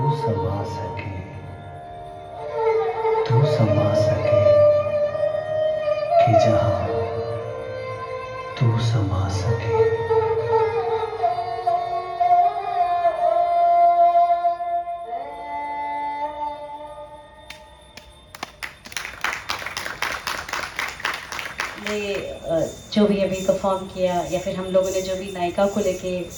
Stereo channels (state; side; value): identical; both; correlation 1.00